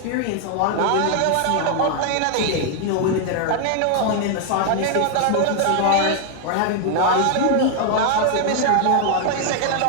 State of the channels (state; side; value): different; both; correlation 0.00